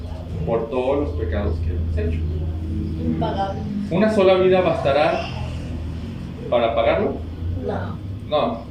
por todos los pecados que hemos hecho. Impagable. ¿Una sola vida bastará para pagarlo? No. No.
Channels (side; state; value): both; identical; correlation 1.00